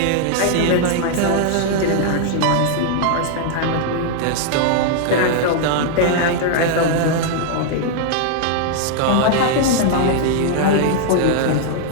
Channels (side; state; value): both; different; correlation 0.00